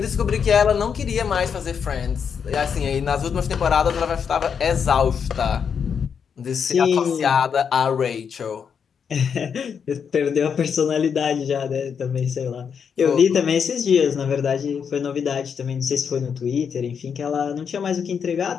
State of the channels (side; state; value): right; quieter; 6.9 dB